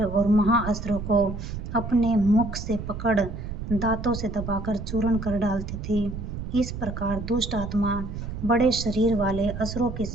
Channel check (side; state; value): right; noise; rumble, 7 dB below the sound